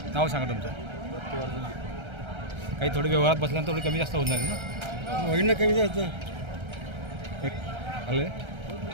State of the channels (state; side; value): late; left; 1.3 ms